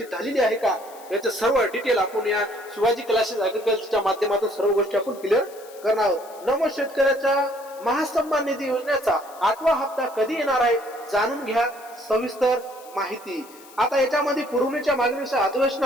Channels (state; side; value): noise; left; hiss, 22 dB below the sound